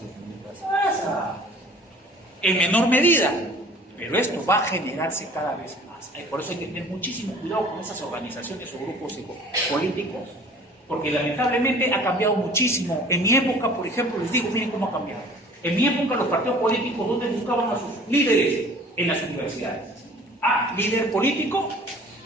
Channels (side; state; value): both; normal; correlation 0.49